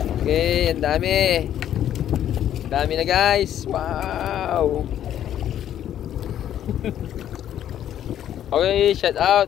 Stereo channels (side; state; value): right; quieter; 10.9 dB